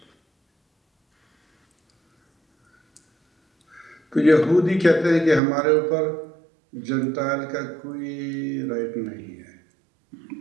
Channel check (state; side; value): drops out; left; at 5.4 s